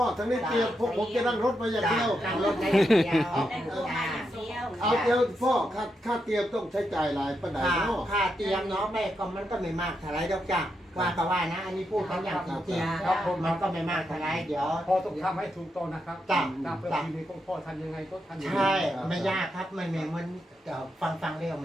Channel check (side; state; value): both; normal; correlation 0.83